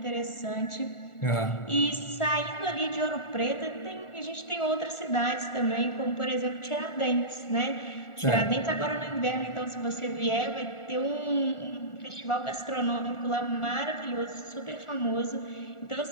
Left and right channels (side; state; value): right; late; 1.4 ms